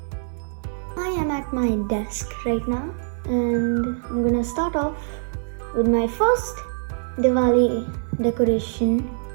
I am at my desk right now and I'm going to start off with my first Diwali decoration,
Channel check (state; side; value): silent; left; digital silence